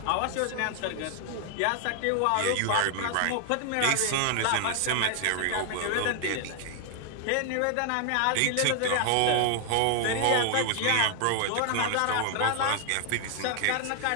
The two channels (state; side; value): different; both; correlation 0.00